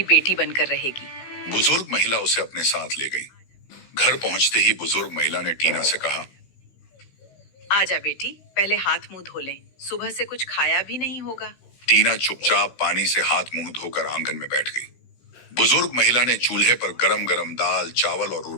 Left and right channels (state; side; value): late; right; 16 ms